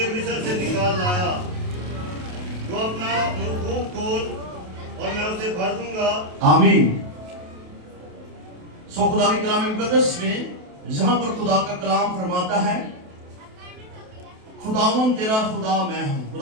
मिस्र से निकाल लाया। तो अपना मुंह खोल और मैं उसे भर दूंगा। आमीन। सो खुदा के कलाम मुकद्दस में जहां पर खुदा का कलाम फरमाता है, खुदावन तेरा खुदा मैं हूं,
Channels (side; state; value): left; late; 28 ms